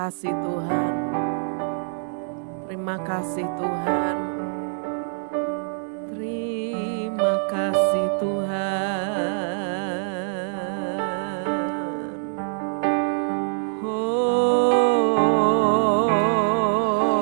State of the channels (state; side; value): silent; left; digital silence